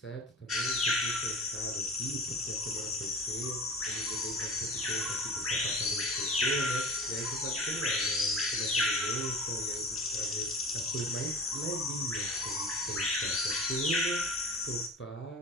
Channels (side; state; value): both; normal; correlation 0.36